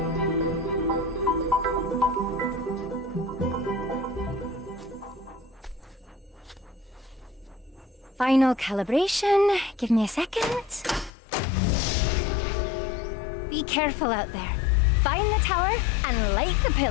Final calibration. Give me a second. Be careful out there. Find the tower and light the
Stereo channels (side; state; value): right; drops out; at 11.1 s